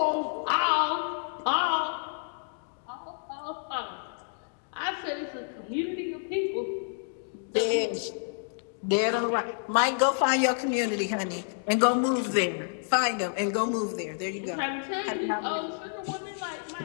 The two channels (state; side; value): silent; right; digital silence